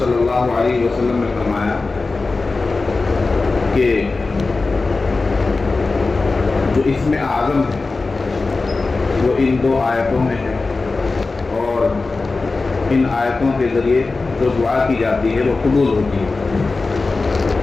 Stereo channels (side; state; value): right; quieter; 3.7 dB